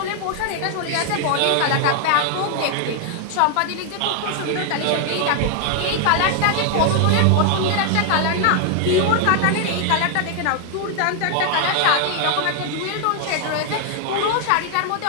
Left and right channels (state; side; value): different; both; correlation 0.00